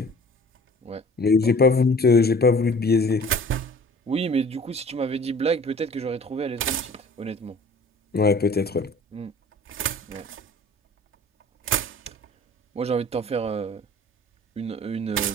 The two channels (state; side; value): normal; both; correlation 0.47